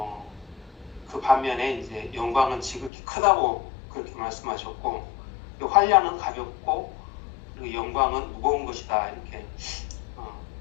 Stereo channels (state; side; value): drops out; right; at 2.9 s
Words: 그 반면에 이제 영광은 지극히 크다고 그렇게 말씀하셨고, 환난은 가볍고 그리고 영광은 무거운 것이다 이렇게